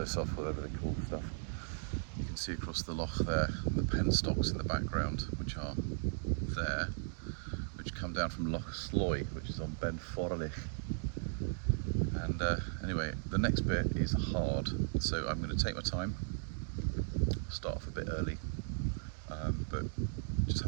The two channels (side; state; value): left; silent; digital silence